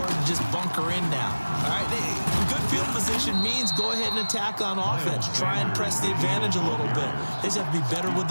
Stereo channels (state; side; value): inverted; both; correlation -1.00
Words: to just bunker in now. All right, good field position means go ahead and attack on offense. Try and press the advantage a little bit. They just have to be better with